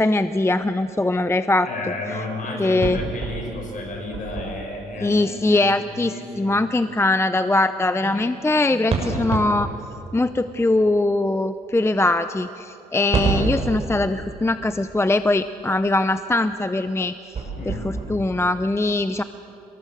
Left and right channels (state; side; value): normal; both; correlation 0.76